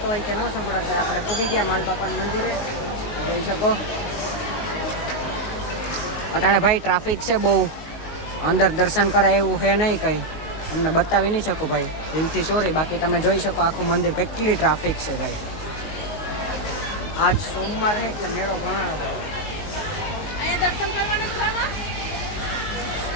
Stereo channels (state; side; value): late; right; 19 ms